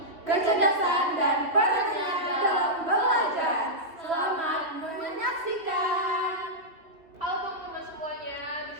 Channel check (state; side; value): late; left; 3.1 ms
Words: kecerdasan dan perannya dalam belajar. Selamat menyaksikan. Halo teman-teman semuanya, di